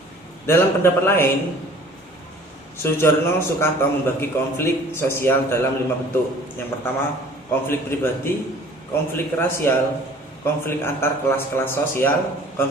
Dalam pendapat lain, Soejarno Sukanto membagi konflik sosial dalam 5 bentuk. Yang pertama, konflik pribadi, konflik rasial, konflik antar kelas-kelas sosial,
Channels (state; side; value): normal; both; correlation 0.50